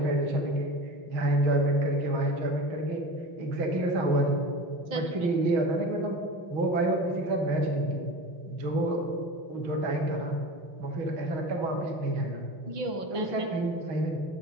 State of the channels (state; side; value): late; left; 5.8 ms